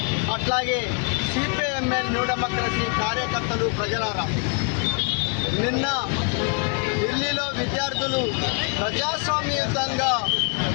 అట్లాగే సిపిఐఎంఎల్ న్యూ డెమోక్రసీ కార్యకర్తలు, ప్రజలారా, నిన్న ఢిల్లీలో విద్యార్థులు ప్రజాస్వామ్యయుతంగా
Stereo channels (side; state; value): right; quieter; 36.8 dB